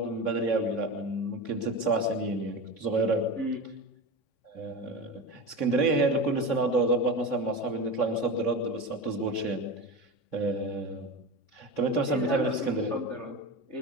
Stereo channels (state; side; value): late; right; 3.6 ms